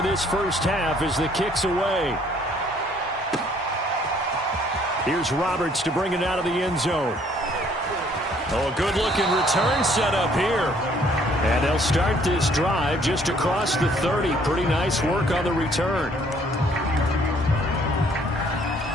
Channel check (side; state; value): both; normal; correlation 0.62